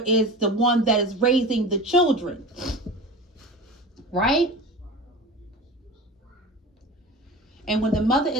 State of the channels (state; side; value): normal; both; correlation 0.32